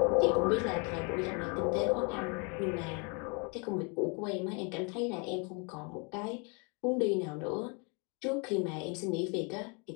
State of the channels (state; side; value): quieter; right; 33.9 dB